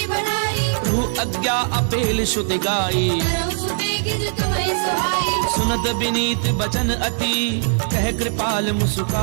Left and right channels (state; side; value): silent; left; digital silence